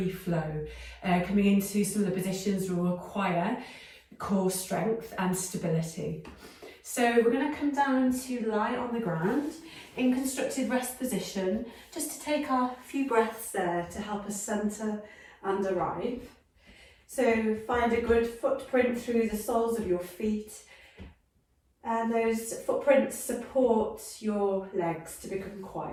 flow, coming into some of the positions will require core strength and stability. So we're going to come down to lie on the ground in constructed rest position, just to take our few breaths there to help us centre and arrive. So find a good footprint through the soles of your feet, and those footprints support your legs to become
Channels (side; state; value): both; identical; correlation 1.00